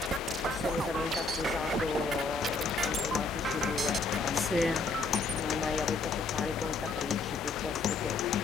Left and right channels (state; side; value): quieter; right; 3.7 dB